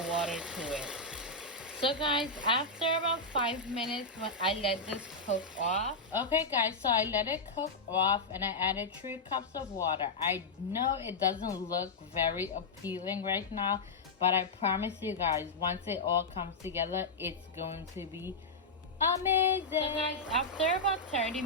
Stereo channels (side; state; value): right; quieter; 3.3 dB